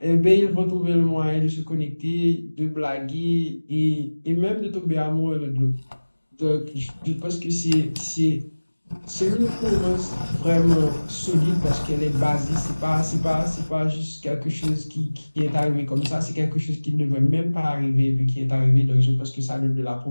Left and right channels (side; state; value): both; inverted; correlation -1.00